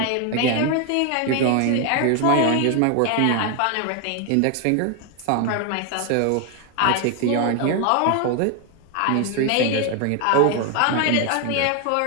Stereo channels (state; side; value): different; both; correlation 0.01